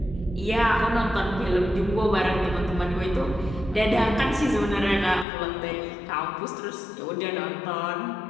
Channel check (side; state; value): right; drops out; at 5.2 s